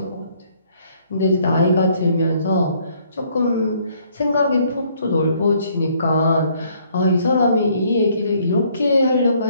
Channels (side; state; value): both; inverted; correlation -0.65